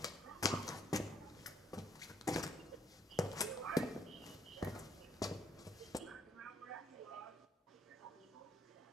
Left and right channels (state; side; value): normal; both; correlation 0.70